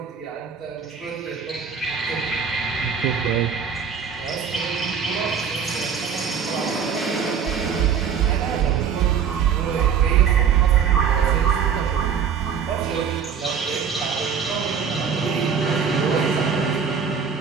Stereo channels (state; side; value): quieter; left; 6.9 dB